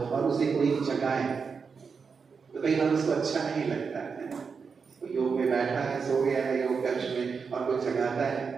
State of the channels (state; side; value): quieter; left; 5.5 dB